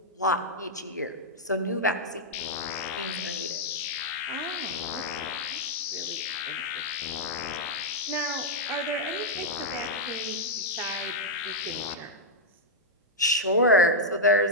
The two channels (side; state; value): both; normal; correlation -0.03